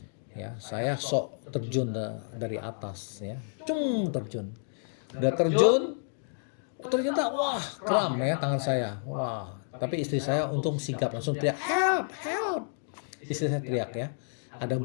Ya, saya sok terjun dari atas ya. Terjun. Udah terjun, ternyata wah, kram ya tangan saya. Wah, tapi istri saya untung sigap langsung teriak, "Help, help." Istri saya teriak ya. Ada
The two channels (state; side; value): silent; right; digital silence